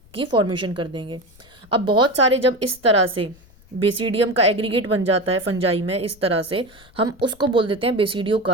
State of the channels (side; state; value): left; noise; rumble, 26 dB below the sound